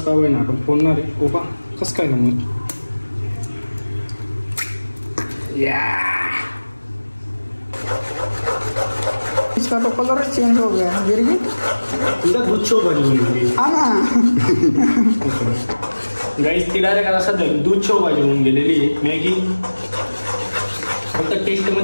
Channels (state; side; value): inverted; both; correlation -1.00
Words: का होईना आपण फोडणार आहे. ओपा कसं काय ना मग इसका तो कलर चेंज हो गया गिरगी. तुझा दूध शो बनी गाईस. ती डायरेक्ट आता सध्या दूध शो भाजी होऊन गेलेली आहे मॅगी. फक्त टेस्ट